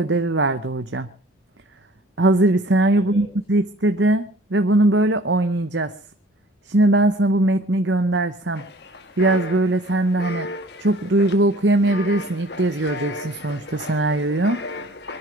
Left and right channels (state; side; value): normal; both; correlation 0.51